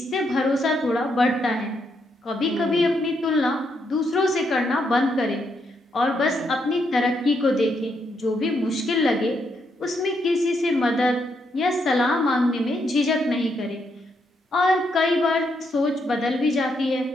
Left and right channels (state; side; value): normal; both; correlation 0.78